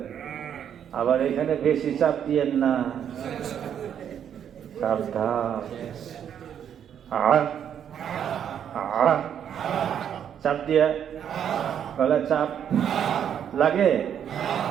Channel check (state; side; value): quieter; left; 9.0 dB